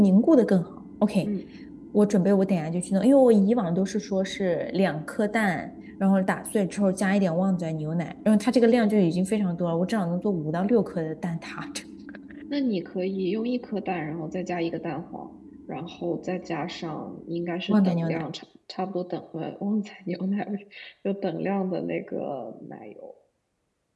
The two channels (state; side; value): identical; both; correlation 1.00